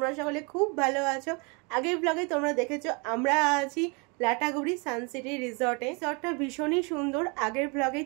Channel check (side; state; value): left; quieter; 31.7 dB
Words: সকলে খুব ভালো আছো। আগের ব্লগে তোমরা দেখেছো আমরা আছি লাটাগুড়ি সানসিটি রিসর্টে। রিসর্টটা ভীষণই সুন্দর। আগের ব্লগেই